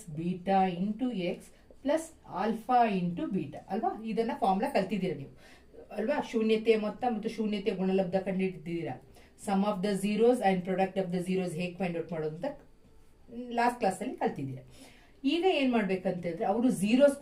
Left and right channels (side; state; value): both; identical; correlation 1.00